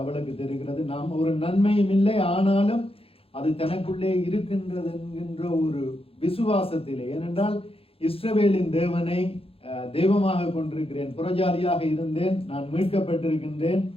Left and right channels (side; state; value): right; late; 0.27 ms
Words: அவளுக்கு தெரிகிறது. நாம் ஒரு நன்மையும் இல்லை, ஆனாலும் அது தனக்குள்ளே இருக்கின்றது என்கின்ற ஒரு விசுவாசத்திலே. ஏனென்றால் இஸ்ரவேலின் தேவனை தெய்வமாக கொண்டிருக்கிறேன், புறஜாதியாக இருந்தேன், நான் மீட்கப்பட்டிருக்கின்றேன்,